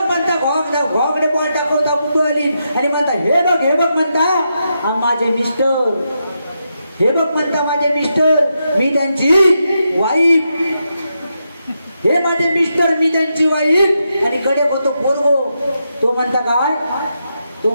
म्हणता घोकडे बॉल टाकवता कुतुहली आणि म्हणता हे बघ म्हणता माझे मिस्टर हे बघ म्हणता माझे मिस्टर मी त्यांची वाईफ हे माझे मिस्टर मी त्यांची वाईफ आणि कडे होतो पोरगो तो म्हणता काय तो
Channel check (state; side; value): inverted; both; correlation -0.84